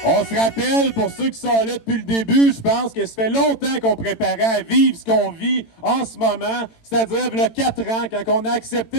On se rappelle, pour ceux qui sont là depuis le début, je pense que ça fait longtemps qu'on préparait à vivre ce qu'on vit en ce moment, c'est-à-dire il y a 4 ans, quand on a accepté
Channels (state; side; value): late; right; 18 ms